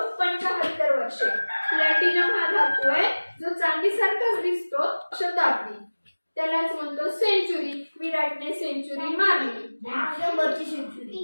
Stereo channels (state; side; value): inverted; both; correlation -1.00